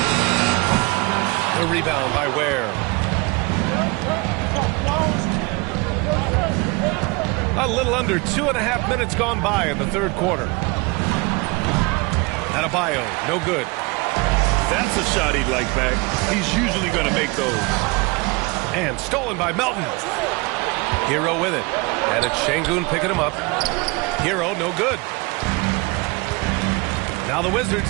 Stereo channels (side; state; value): left; quieter; 26.9 dB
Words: The rebound by Ware. A little under 2.5 minutes gone by in the third quarter. Adebayo, no good. That's a shot he'd like back. He's usually going to make those. And stolen by Melton. Hero with it. And it's Şengün picking him up. Hero, no good. Now the